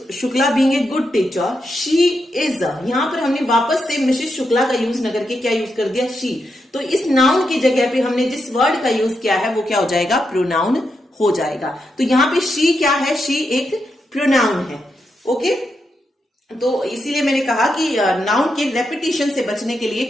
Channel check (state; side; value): normal; both; correlation 0.84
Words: Shukla being a good teacher, she is, यहां पर हमने वापस से मिसेस शुक्ला का यूज न करके क्या यूज कर दिया? शी। तो इस नाउन की जगह पे हमने जिस वर्ड का यूज किया है वो क्या हो जाएगा? प्रोनाउन हो जाएगा। तो यहां पे शी क्या है? शी एक प्रोनाउन है। ओके, तो इसीलिए मैंने कहा कि नाउन के रेपिटेशन से बचने के लिए